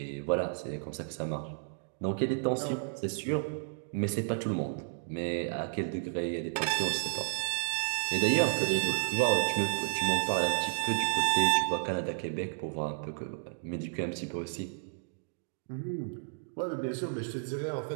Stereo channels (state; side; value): silent; left; digital silence